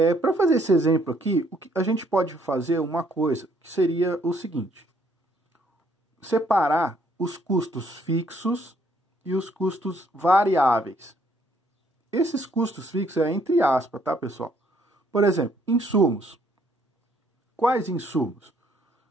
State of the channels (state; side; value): normal; both; correlation 0.67